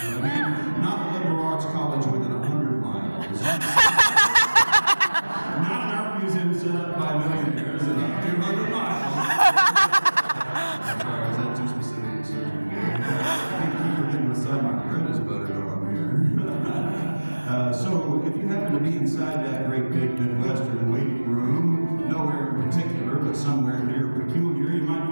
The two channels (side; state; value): both; inverted; correlation -1.00